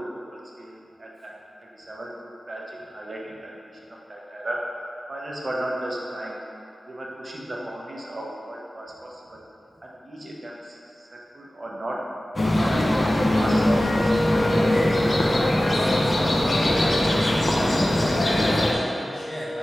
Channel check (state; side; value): normal; both; correlation 0.96